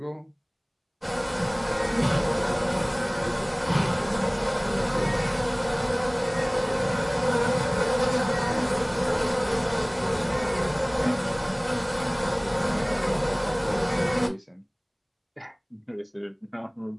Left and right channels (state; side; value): identical; both; correlation 1.00